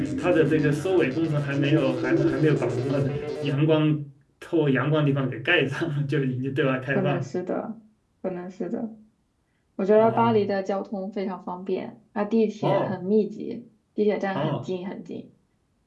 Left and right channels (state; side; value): identical; both; correlation 1.00